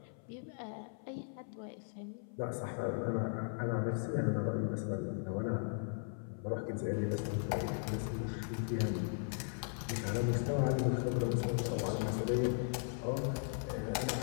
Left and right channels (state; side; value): silent; right; 53 dB below the other